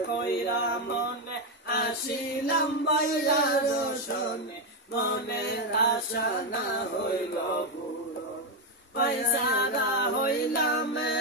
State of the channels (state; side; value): normal; both; correlation 0.06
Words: কইরা মনে আসিলাম বাইয়ার শোনে মনের আশা না হইল পূরণ পয়সারা হইলাম